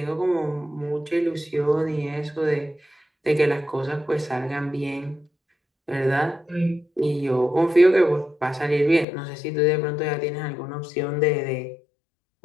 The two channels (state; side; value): drops out; right; at 9.1 s